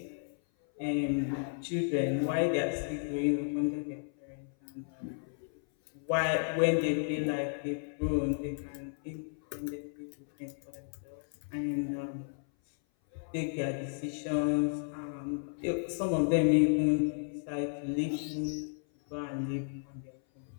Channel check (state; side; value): silent; right; 56 dB below the other